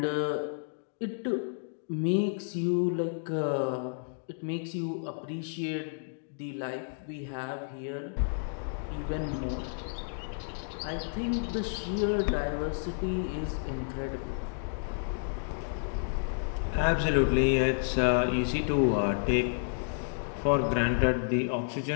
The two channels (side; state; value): right; silent; digital silence